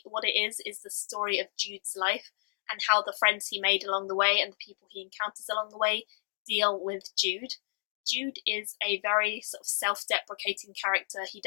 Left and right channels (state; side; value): silent; right; digital silence